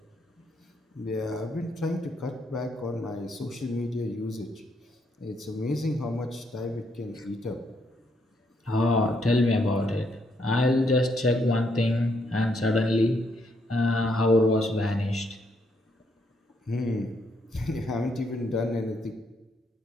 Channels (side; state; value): both; normal; correlation 0.75